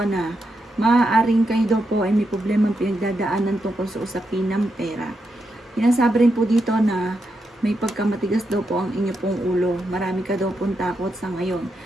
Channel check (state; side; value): normal; both; correlation 0.84